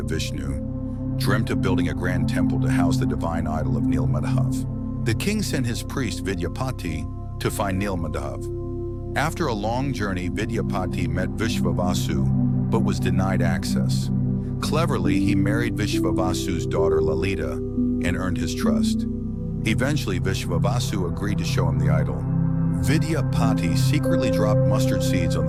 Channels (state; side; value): identical; both; correlation 1.00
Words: Vishnu, dreamt of building a grand temple to house the divine idol of Nilmadhav. The king sent his priest Vidyapati to find Nilmadhav. After a long journey, Vidyapati met Vishvavasu, but was denied access. Cleverly, he married Vishvavasu's daughter Lalita and earned his trust. Eventually, Vishvavasu agreed to show him the idol. Vidyapati secretly dropped mustard seeds on